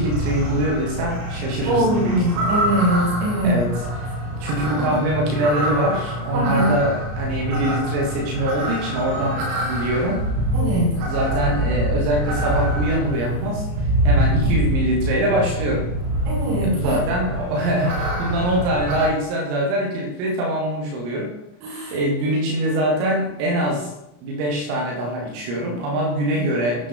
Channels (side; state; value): left; late; 34 ms